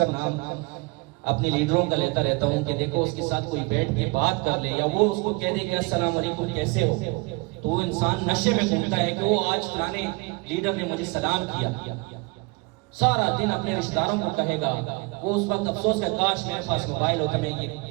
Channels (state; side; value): quieter; left; 27.2 dB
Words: نام اپنے لیڈروں کا لیتا رہتا ہوں کہ دیکھو اس کے ساتھ کوئی بیٹھ کے بات کر لے یا وہ اس کو کہہ دے کہ السلام علیکم کیسے ہو، تو وہ انسان نشے میں گھومتا ہے کہ وہ آج فلانے لیڈر نے مجھے سلام کیا، سارا دن اپنے رشتہ داروں کو کہے گا۔ وہ اس وقت افسوس کا کاش میرے پاس موبائل ہوتا، میں یہ